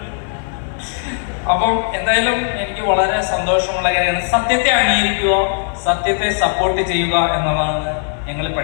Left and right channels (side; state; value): right; silent; 68 dB below the other